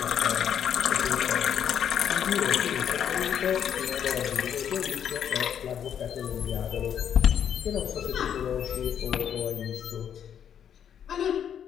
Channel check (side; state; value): right; quieter; 8.8 dB